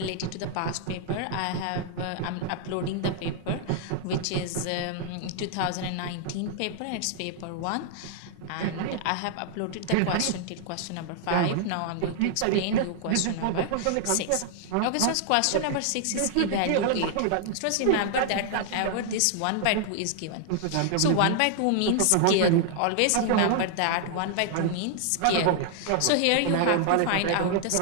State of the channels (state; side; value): different; both; correlation 0.00